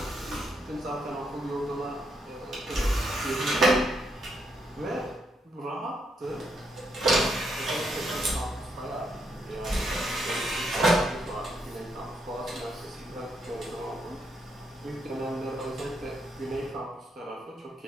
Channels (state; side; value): normal; both; correlation 0.77